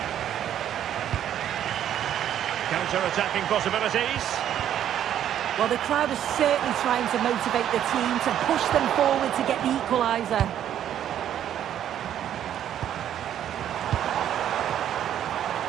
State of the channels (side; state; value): left; quieter; 10.5 dB